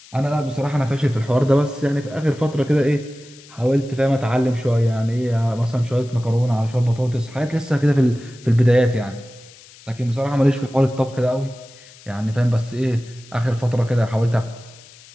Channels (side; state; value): left; noise; hiss, 23 dB below the sound